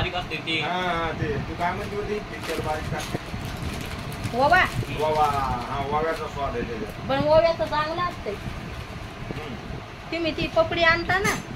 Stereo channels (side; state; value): both; identical; correlation 1.00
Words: असते ते. ते तू काय म्हणते होती? पिक्चर बारीक टाकते ओवा. ओवा, हा ओव्याचा स्वाद आहे त्याच्यात. पण ओव्याचं चांगलं असते. तुम्ही ती पपडी आणता ना,